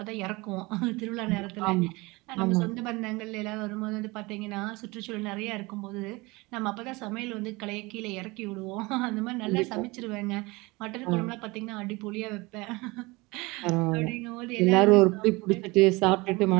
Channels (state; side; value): quieter; left; 23.8 dB